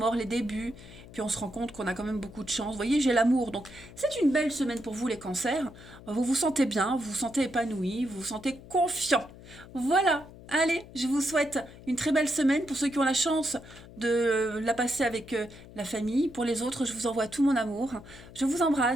les débuts. Puis on se rend compte qu'on a quand même beaucoup de chance. Vous voyez, j'ai l'amour. Donc, c'est une belle semaine pour vous, les cancers. Vous vous sentez bien, vous vous sentez épanoui, vous vous sentez confiant. Voilà. Allez, je vous souhaite une très belle semaine pour ceux qui ont la chance de la passer avec la famille. Pour les autres, je vous envoie tout mon amour. Je vous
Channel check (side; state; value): left; noise; hum, 18 dB below the sound